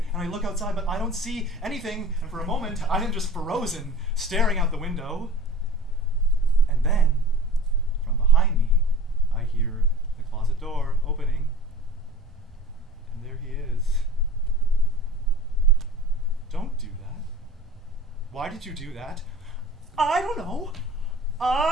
and I look outside, but I don't see anything. And for a moment, I am just frozen, staring out the window. And then, from behind me, I hear the closet door opening. And there he is. Don't do that. Why did you do that? I don't know.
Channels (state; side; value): normal; both; correlation 0.40